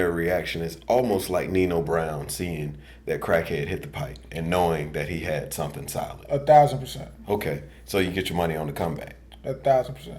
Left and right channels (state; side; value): identical; both; correlation 1.00